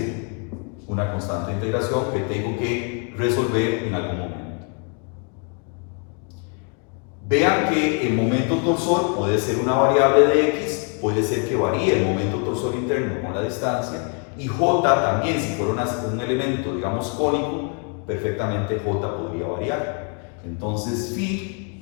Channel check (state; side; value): quieter; right; 38.2 dB